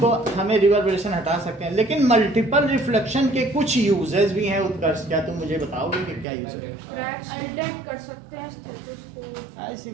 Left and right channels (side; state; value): left; drops out; at 6.2 s